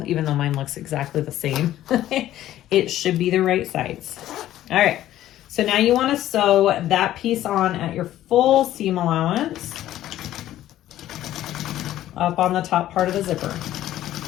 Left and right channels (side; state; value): right; quieter; 13.3 dB